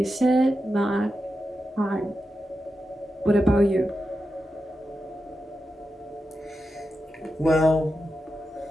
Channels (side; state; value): both; normal; correlation 0.89